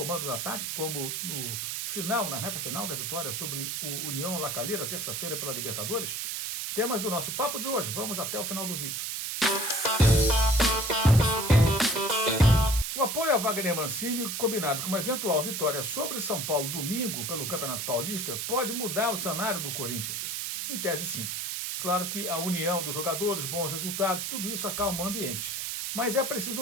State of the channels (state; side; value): noise; right; hiss, 3 dB below the sound